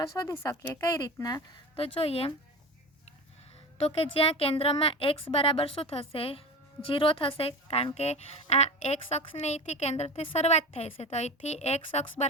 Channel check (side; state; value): both; normal; correlation 0.30